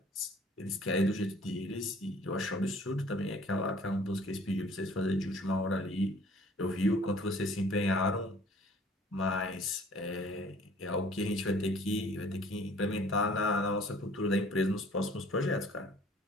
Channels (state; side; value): normal; both; correlation 0.53